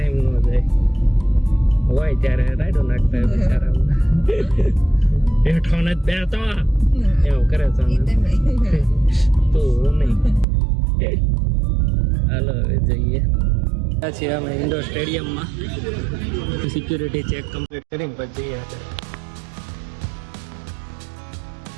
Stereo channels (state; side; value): drops out; left; at 10.5 s